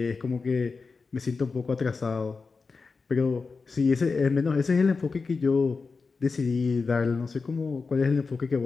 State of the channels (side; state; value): right; quieter; 4.5 dB